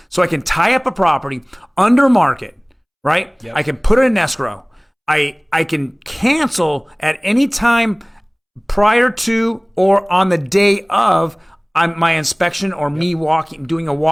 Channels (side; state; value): both; identical; correlation 1.00